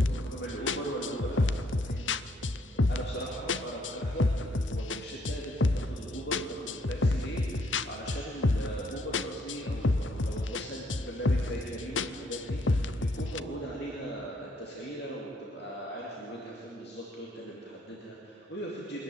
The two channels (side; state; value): both; normal; correlation 0.69